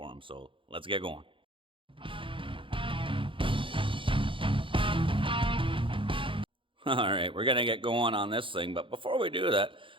him. So let's get going. All right, we're gonna get going on this thing, but before we do that,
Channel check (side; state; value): left; late; 0.25 ms